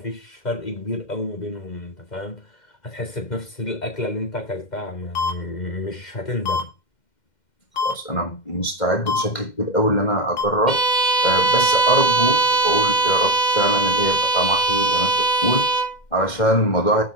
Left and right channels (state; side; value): late; right; 2.1 ms